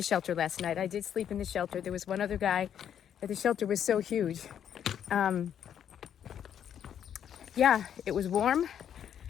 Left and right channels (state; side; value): quieter; right; 9.2 dB